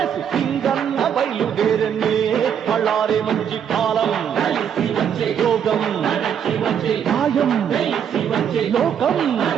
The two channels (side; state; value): left; quieter; 8.4 dB